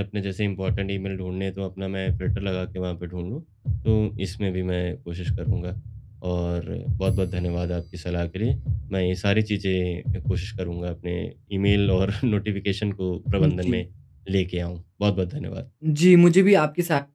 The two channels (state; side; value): identical; both; correlation 1.00